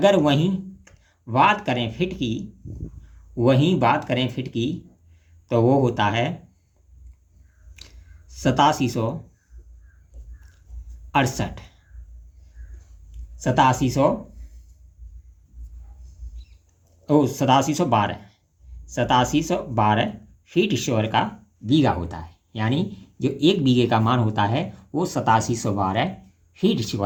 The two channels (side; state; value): both; identical; correlation 1.00